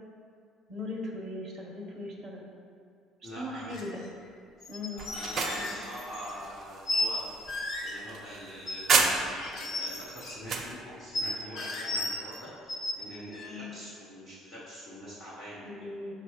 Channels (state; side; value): normal; both; correlation 0.62